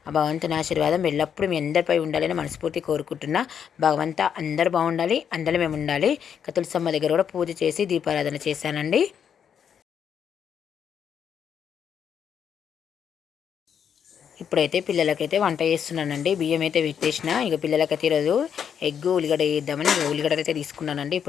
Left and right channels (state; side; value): quieter; right; 8.0 dB